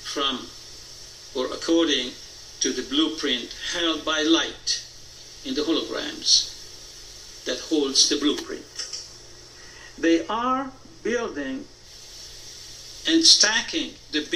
from or according to the blueprint held by light in the holograms that holds the blueprint. They are building and stacking the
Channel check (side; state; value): both; identical; correlation 1.00